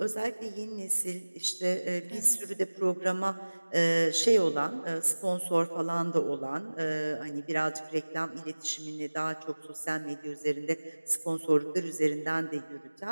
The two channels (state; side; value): inverted; both; correlation -1.00